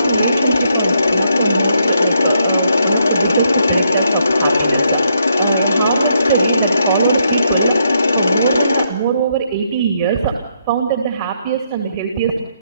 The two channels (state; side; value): inverted; both; correlation -0.75